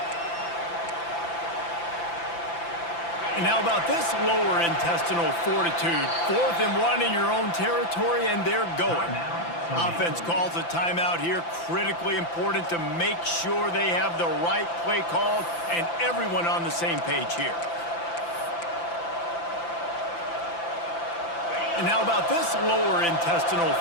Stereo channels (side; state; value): right; late; 5.9 ms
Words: And how about this lower intestinal fortitude? 4th and 1 in your own territory, and they're going. Offense calls a timeout here. Critically important to make sure they have the right play call and everyone on the same page here. And how about this lower intestinal